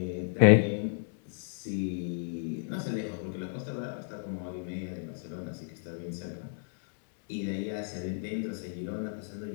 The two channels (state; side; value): silent; right; digital silence